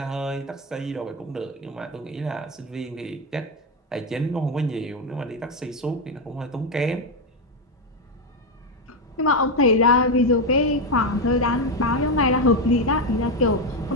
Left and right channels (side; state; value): both; normal; correlation 0.09